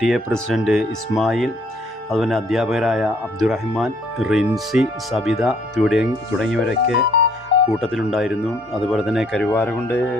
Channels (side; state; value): both; normal; correlation 0.63